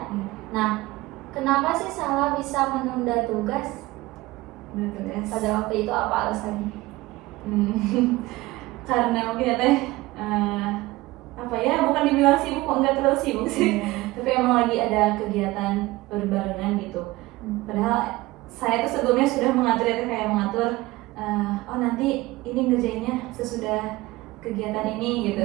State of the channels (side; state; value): left; quieter; 19.7 dB